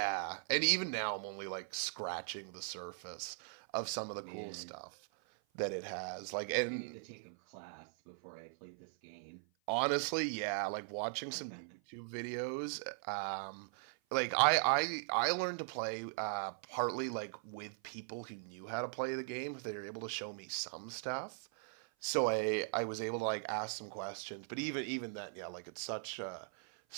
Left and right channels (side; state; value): left; silent; 51 dB below the other